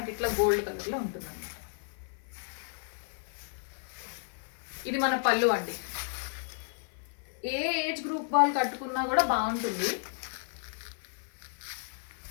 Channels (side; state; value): right; silent; 56 dB below the other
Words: ఇట్లా గోల్డ్ కలర్లో ఉంటుంది అన్నమాట. ఇది మన పళ్ళు అండి. ఏ ఏజ్ గ్రూప్ వాళ్ళు కట్టుకున్నా కూడా బాగుంటుంది.